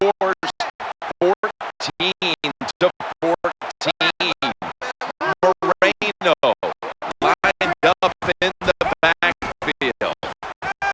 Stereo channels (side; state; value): both; identical; correlation 1.00